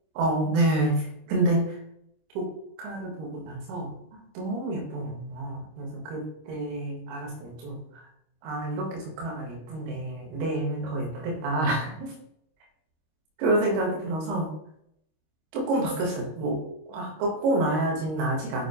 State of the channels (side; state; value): left; late; 26 ms